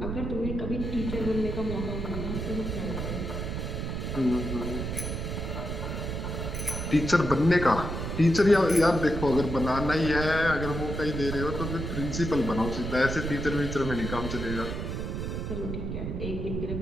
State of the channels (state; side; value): noise; right; rumble, 4 dB below the sound